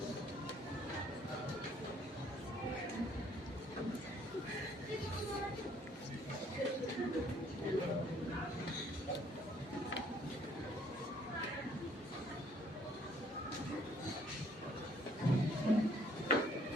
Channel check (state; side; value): normal; both; correlation 0.62